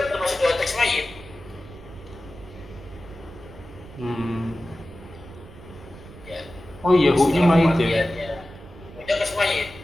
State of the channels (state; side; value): noise; right; rumble, 18 dB below the sound